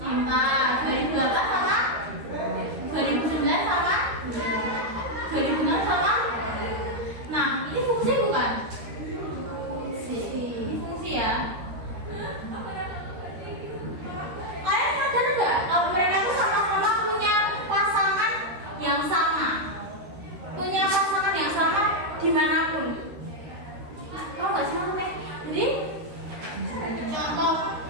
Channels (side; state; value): left; late; 13 ms